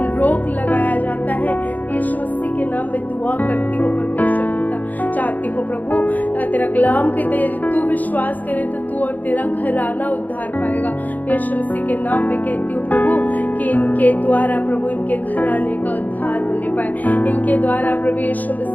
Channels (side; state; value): right; late; 0.081 ms